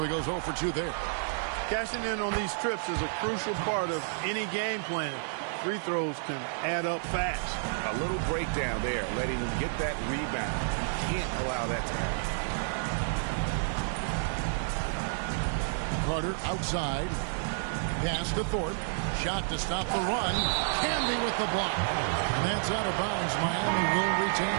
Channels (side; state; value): left; silent; digital silence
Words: goes 0 for 2 there. Cashing in on these trips is a crucial part of any game plan. Free throws can add up fast. A little breakdown there, letting him get that rebound. You can't allow that to happen. Carter outside. Pass to Thorpe. Shot to stop the run. Canby with the block. And that's out of bounds. Miami will